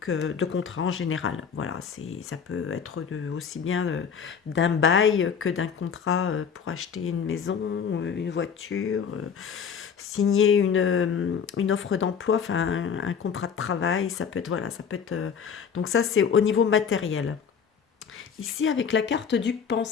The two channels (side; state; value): right; quieter; 6.9 dB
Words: contrat en général. Voilà, ça peut être aussi bien d'un bail que d'un contrat pour acheter une maison, une voiture, signer une offre d'emploi, enfin un contrat de travail, ça peut être, voilà, ça peut être... donc ça, c'est au niveau matériel. Ici, avec la carte du